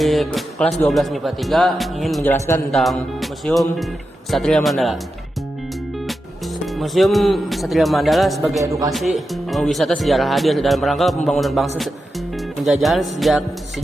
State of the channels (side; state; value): both; normal; correlation 0.89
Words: kelas 12 MIPA 3 ingin menjelaskan tentang Museum Satria Mandala. Museum Satria Mandala sebagai edukasi wisata sejarah hadir dalam rangka pembangunan bangsa. Penjajahan